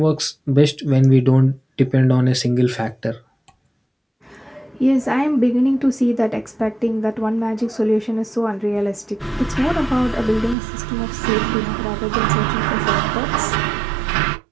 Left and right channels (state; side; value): drops out; left; at 10.6 s